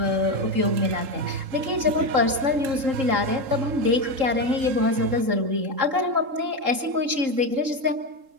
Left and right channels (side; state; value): left; late; 3.8 ms